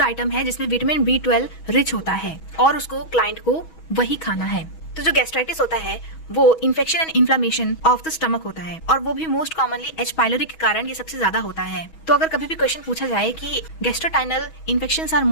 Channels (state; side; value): late; right; 6.2 ms